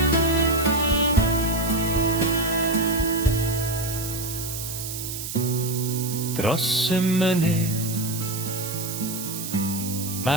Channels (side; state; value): right; noise; hiss, 7 dB below the sound